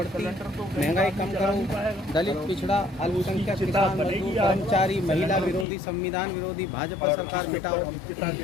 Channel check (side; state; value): right; drops out; at 5.7 s